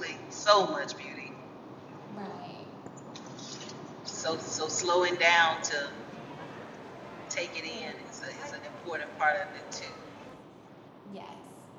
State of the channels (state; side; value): identical; both; correlation 1.00